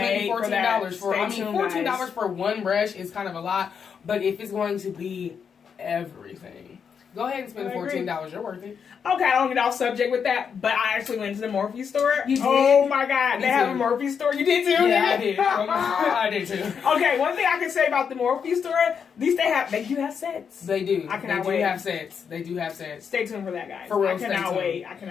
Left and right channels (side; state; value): right; quieter; 6.8 dB